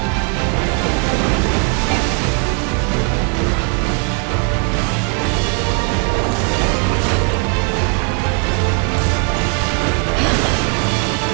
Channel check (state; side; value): quieter; left; 34.5 dB